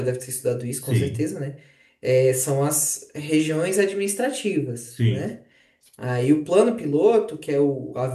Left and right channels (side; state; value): both; identical; correlation 1.00